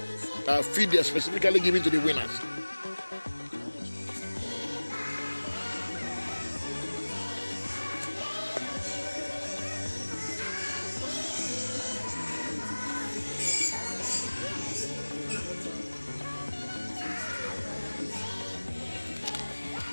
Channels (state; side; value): inverted; both; correlation -1.00